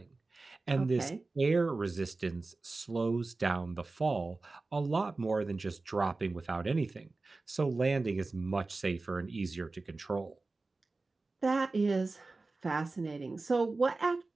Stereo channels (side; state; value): left; quieter; 3.5 dB